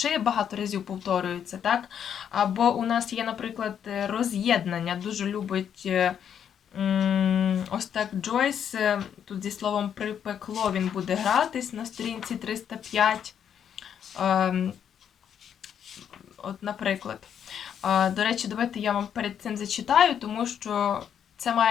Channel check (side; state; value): right; quieter; 8.6 dB